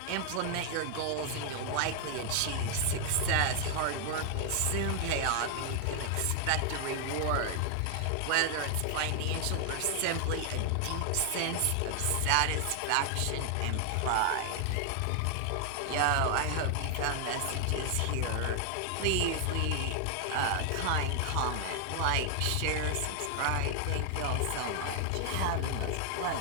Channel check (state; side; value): different; both; correlation 0.00